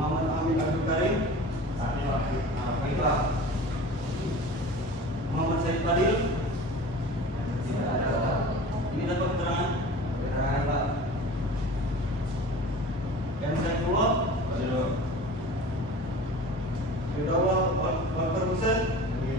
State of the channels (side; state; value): both; normal; correlation 0.38